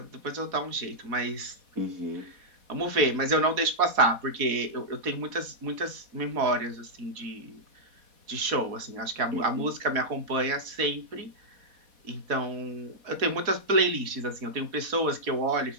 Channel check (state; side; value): late; left; 4.1 ms